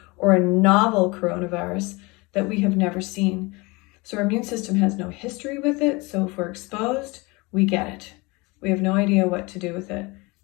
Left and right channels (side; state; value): right; quieter; 25.3 dB